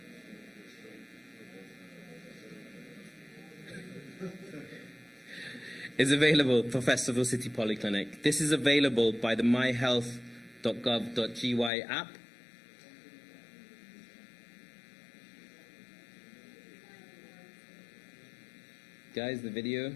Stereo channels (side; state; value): right; drops out; at 11.7 s